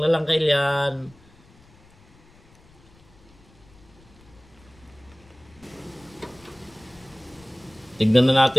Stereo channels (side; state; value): left; noise; rumble, 27 dB below the sound